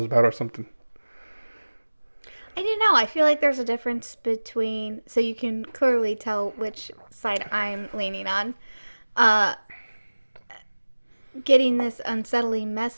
bad or something. I don't know. I feel like there's a difference between, so you can clearly tell which side I'm leaning on. Getting this unsettling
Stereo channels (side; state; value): both; inverted; correlation -1.00